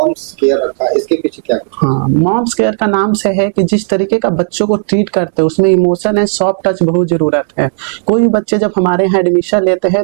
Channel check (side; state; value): left; silent; digital silence